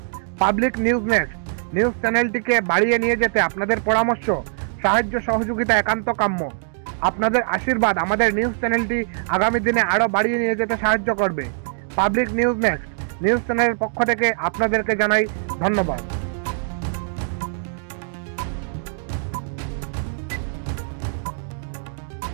পাবলিক নিউজ নেক্সট নিউজ চ্যানেলটিকে বাড়িয়ে নিয়ে যেতে আপনাদের পরামর্শ, সাহায্য, সহযোগিতা একান্ত কাম্য। আপনাদের আশীর্বাদ আমাদের নিউজ চ্যানেলটি আগামী দিনে আরও বাড়িয়ে নিয়ে যেতে সাহায্য করবে। পাবলিক নিউজ নেক্সট নিউজ চ্যানেলের পক্ষ থেকে আপনাদেরকে জানাই ধন্যবাদ।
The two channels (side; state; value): left; silent; digital silence